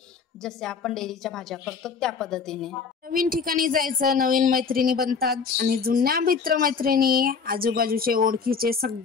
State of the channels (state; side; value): quieter; right; 5.6 dB